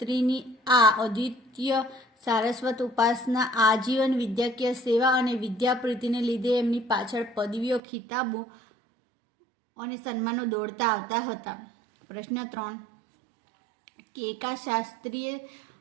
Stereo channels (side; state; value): left; drops out; at 7.8 s